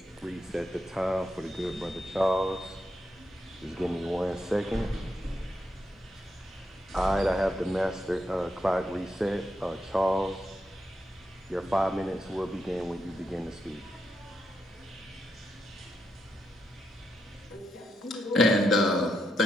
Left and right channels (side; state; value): both; normal; correlation 0.82